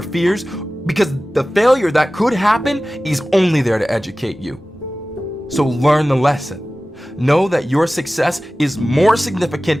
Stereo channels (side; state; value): both; normal; correlation 0.96